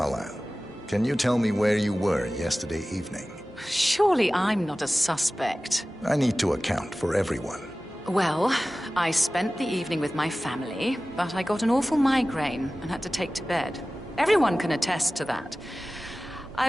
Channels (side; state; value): both; normal; correlation 0.97